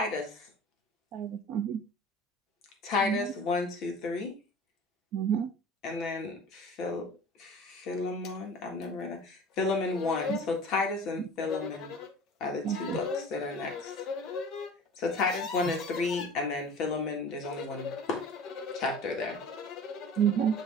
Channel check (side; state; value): both; normal; correlation 0.41